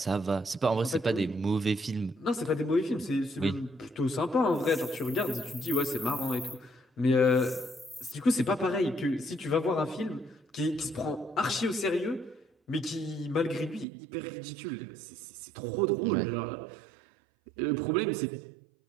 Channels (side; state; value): left; drops out; at 13.9 s